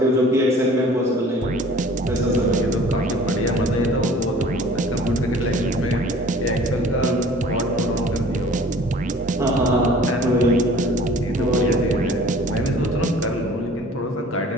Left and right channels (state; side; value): normal; both; correlation 0.49